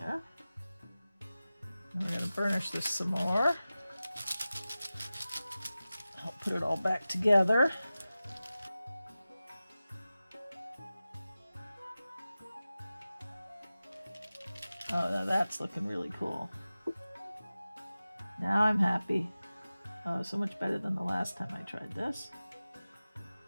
And we're gonna burnish this some more. I'll put it all back together. Oh, now that's looking really cool. Now I'm happy. Oh, so much better than the last time I tried this.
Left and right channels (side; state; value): both; inverted; correlation -0.96